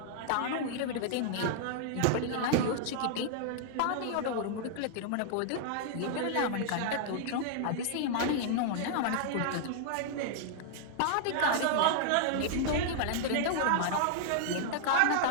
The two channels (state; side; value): different; both; correlation -0.01